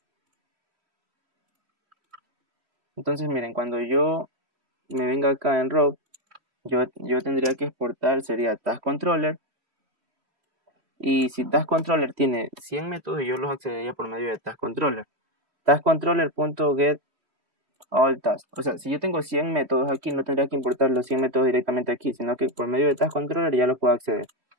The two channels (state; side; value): late; left; 3.1 ms